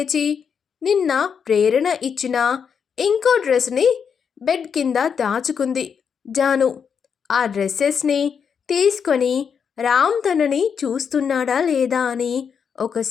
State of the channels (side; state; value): right; quieter; 6.8 dB